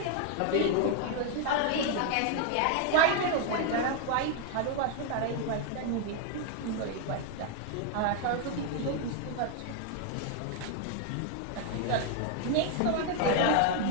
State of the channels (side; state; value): both; different; correlation 0.01